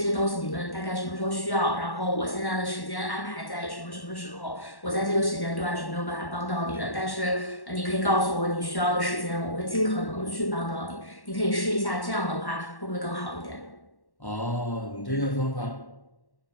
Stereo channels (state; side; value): late; right; 1.1 ms